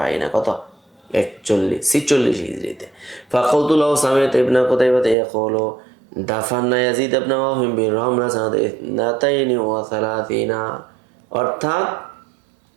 কত 46 হিজরিতে। فقلت له سمعت ابن قتيبة يقول دفنا يزيد بن موهب بالرملة سنة 32 অর্থাৎ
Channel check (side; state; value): left; drops out; at 5.2 s